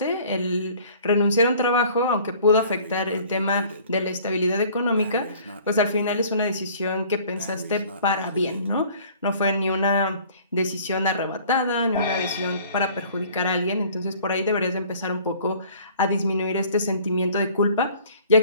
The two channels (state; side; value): inverted; both; correlation -0.52